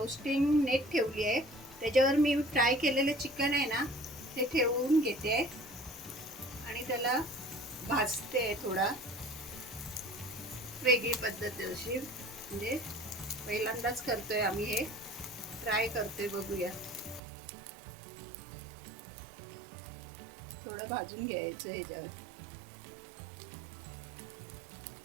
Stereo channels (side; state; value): left; drops out; at 17.2 s